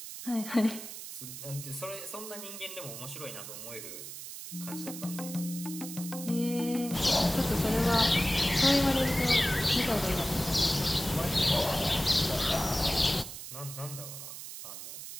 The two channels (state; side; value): noise; right; hiss, 10 dB below the sound